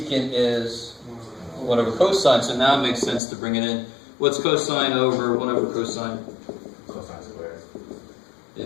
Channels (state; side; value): drops out; right; at 3.2 s